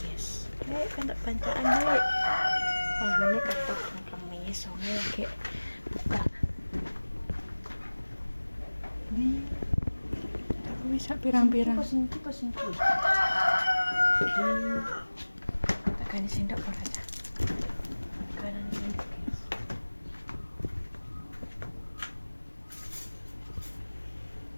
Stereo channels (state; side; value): inverted; both; correlation -1.00